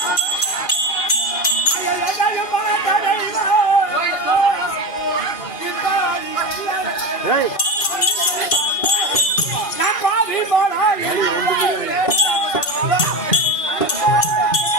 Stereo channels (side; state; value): right; late; 1.5 ms